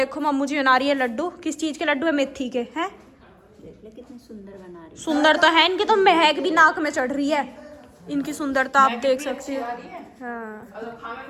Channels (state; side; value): identical; both; correlation 1.00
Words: मम्मू जी बना रही है लड्डू। किस चीज़ के लड्डू है? मेथी के हैं। कितने सुंदर बना रही। सुंदर तो है, इनकी तो महक भी नाक में चढ़ रही है। इनकी सुंदरता आप देख सकते हो। हाँ